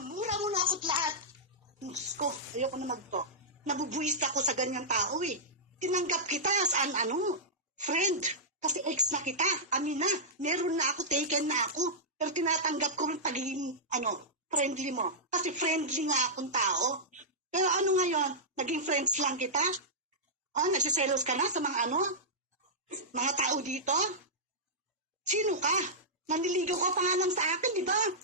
mo na ako't lahat. Diyos ko, ayoko na magto. Nabubuwis ako sa ganyang tao eh. Tinanggap kita as friend. Kasi ex na kita, amin na. Meron na ako, taken na ako. Pero tinatanggap ko rin pagiging, friendly mo. Kasi friendly nga akong tao. Pero ngayon, naging friends lang kita? Nagsiselos ka na sa mga tao dito? Sino ka? Naniligaw ka pa nga lang sa akin, di ba?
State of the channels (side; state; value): both; normal; correlation -0.11